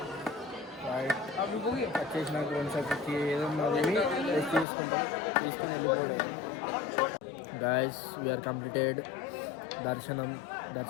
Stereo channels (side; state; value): right; drops out; at 4.7 s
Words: రైట్ వచ్చేసినాక కొంచెంసేపటికి ఏదన్నా రెస్ట్ తీసుకుంటాం, తీసుకొని వెళ్ళిపోవడం. Guys we are completed.